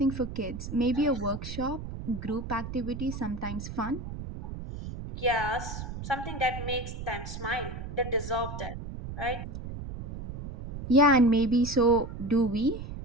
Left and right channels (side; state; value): right; noise; rumble, 8 dB below the sound